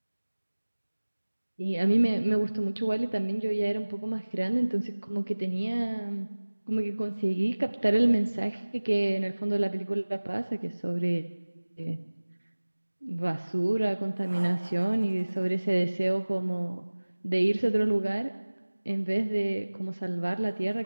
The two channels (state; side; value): inverted; both; correlation -1.00